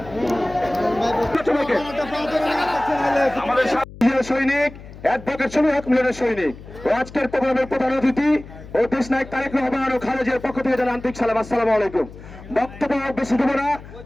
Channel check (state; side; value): noise; left; hum, 16 dB below the sound